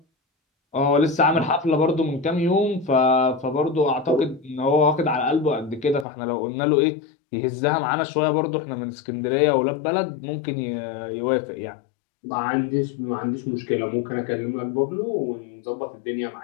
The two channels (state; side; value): drops out; right; at 6.1 s